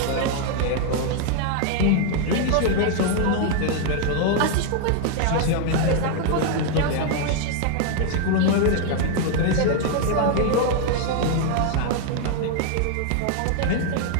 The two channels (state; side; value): different; both; correlation 0.00